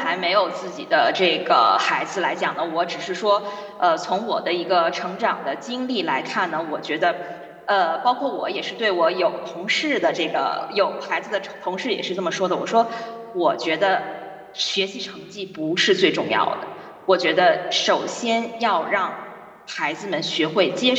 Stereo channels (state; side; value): identical; both; correlation 1.00